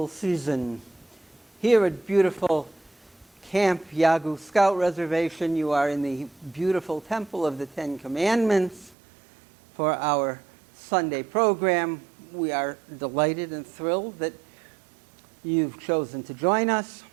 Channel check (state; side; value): drops out; left; at 9.0 s